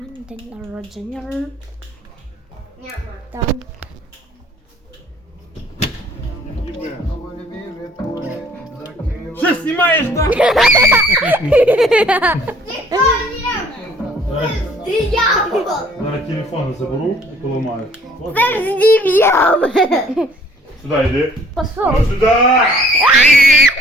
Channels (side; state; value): both; normal; correlation 0.58